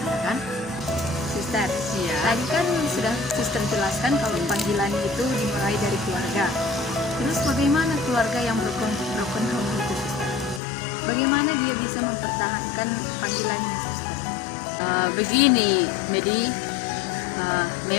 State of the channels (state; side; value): drops out; right; at 10.6 s